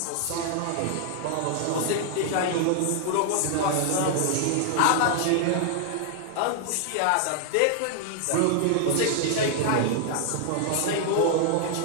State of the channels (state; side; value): different; both; correlation 0.00